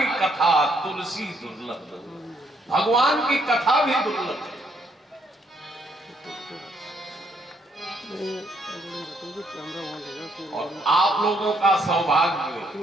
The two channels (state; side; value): normal; both; correlation 0.71